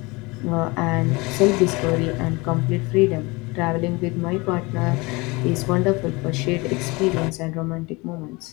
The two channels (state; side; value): quieter; right; 25.0 dB